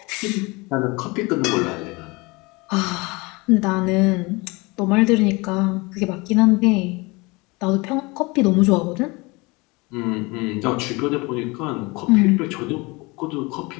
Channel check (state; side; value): quieter; right; 25.3 dB